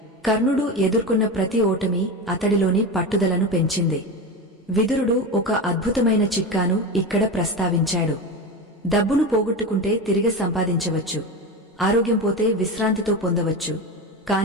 కర్ణుడు ఎదుర్కొన్న ప్రతి ఓటమి అతడిలోని పట్టుదలను పెంచింది. విదురుడు ఒక అద్భుతమైన చిట్కాను ఇక్కడ ప్రస్తావించాడు. డబ్బును పోగొట్టుకుంటే తిరిగి సంపాదించవచ్చు, ఆరోగ్యం పోతే విశ్రాంతితో పొందవచ్చు,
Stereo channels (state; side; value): normal; both; correlation 0.22